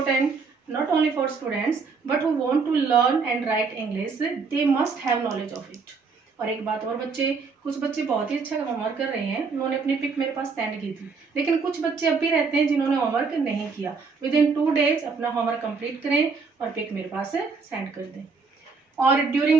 not only for students but who want to learn and write English, they must have knowledge of it. और एक बात और बच्चे, कुछ बच्चे बहुत ही अच्छा होमवर्क कर रहे हैं, उन्होंने अपनी पिक मेरे पास सेंड की थी, लेकिन कुछ बच्चे अब भी रहते हैं जिन्होंने होमवर्क नहीं किया। विद इन 2 days अपना होमवर्क कंप्लीट करें और पिक मेरे पास सेंड कर दें। और ड्यूरिंग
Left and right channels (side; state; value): left; quieter; 4.8 dB